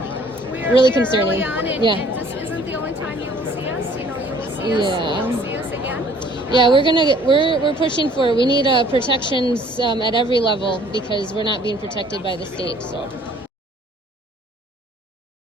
Really concerning. Early on, and this isn't the only time you will see us. You know, you will see us. Yeah. You will see us again. Yeah, we're pushing for. We need protections at every level because we're not being protected by the state. So.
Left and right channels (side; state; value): both; normal; correlation 0.56